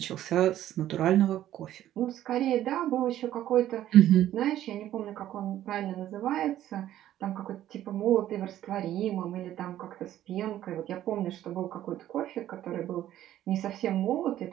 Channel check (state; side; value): quieter; left; 12.6 dB